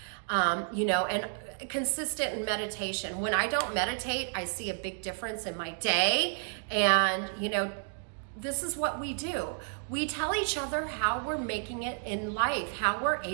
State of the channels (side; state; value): left; silent; 57 dB below the other